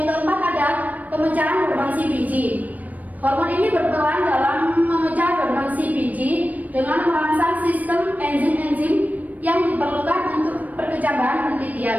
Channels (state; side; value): late; left; 0.076 ms